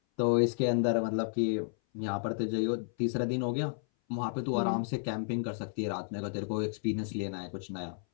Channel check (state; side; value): silent; right; 56 dB below the other